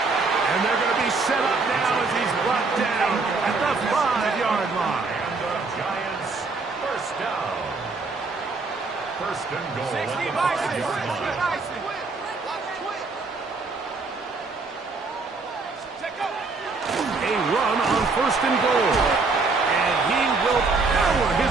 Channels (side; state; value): left; quieter; 4.0 dB